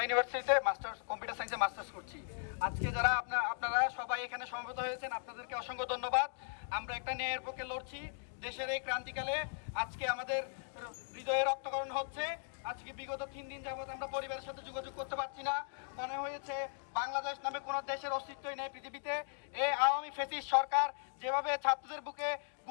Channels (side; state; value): right; silent; digital silence